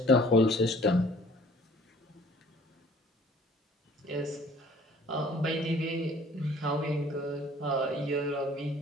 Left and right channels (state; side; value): normal; both; correlation 0.54